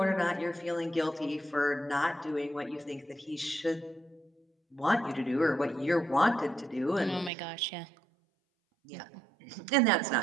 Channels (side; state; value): left; drops out; at 7.3 s